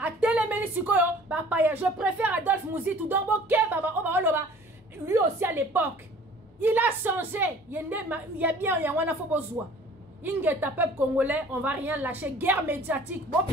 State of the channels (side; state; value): both; normal; correlation 0.49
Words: A je préfère Adolphe Mozitu. Donc, lui aussi à l'époque, il a changé. Il y a bien, il y a un besoin. Il y a un peuple congolais, on va rien lâcher. Guerre médiatique. Bon,